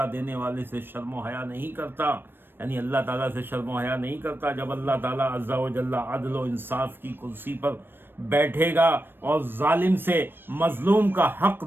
دینے والے سے شرم و حیا نہیں کرتا، یعنی اللہ تعالیٰ سے شرم و حیا نہیں کرتا. جب اللہ تعالیٰ عز و جل عدل و انصاف کی کرسی پر بیٹھے گا اور ظالم سے مظلوم کا حق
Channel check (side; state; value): left; late; 0.098 ms